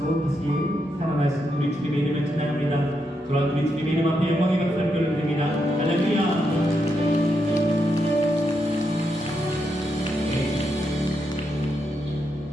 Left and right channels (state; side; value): normal; both; correlation 0.82